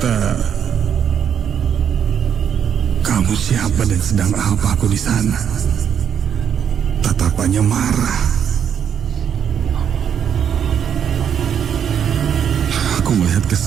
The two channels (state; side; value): quieter; left; 8.4 dB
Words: "Kamu siapa dan sedang apa aku di sana?" Tatapannya marah. Aku melihat ke